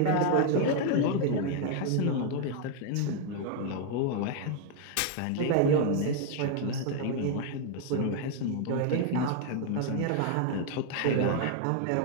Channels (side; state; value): both; different; correlation 0.00